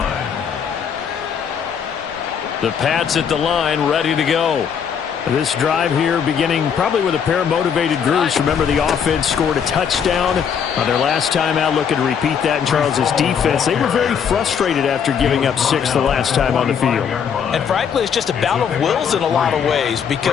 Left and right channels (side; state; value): right; quieter; 7.4 dB